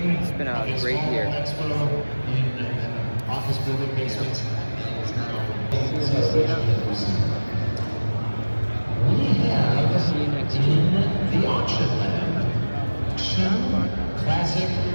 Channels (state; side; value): inverted; both; correlation -1.00